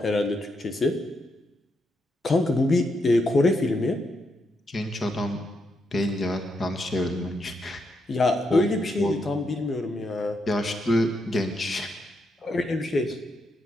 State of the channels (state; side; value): normal; both; correlation 0.81